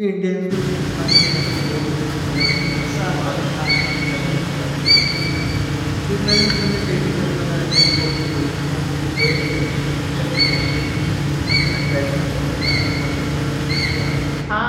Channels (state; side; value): identical; both; correlation 1.00